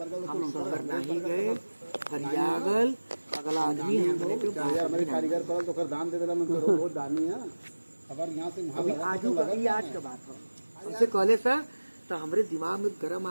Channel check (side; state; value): both; inverted; correlation -1.00